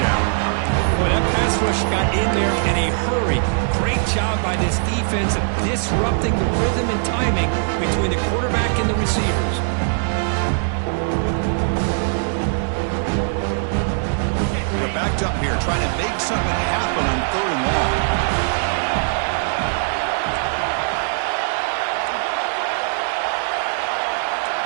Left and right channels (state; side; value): silent; left; digital silence